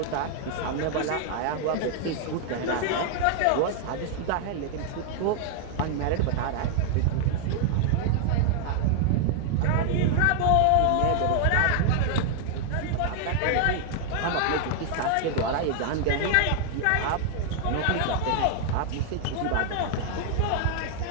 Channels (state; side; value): different; both; correlation 0.00